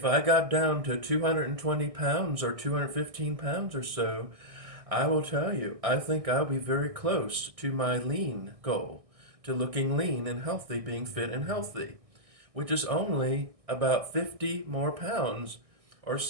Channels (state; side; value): late; left; 1.6 ms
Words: I got down to 220 pounds or 215 pounds or so, I will tell you, I think I'll be very close to my lean goal, to looking lean and healthy, being fit and healthy, which is only about 50 more pounds or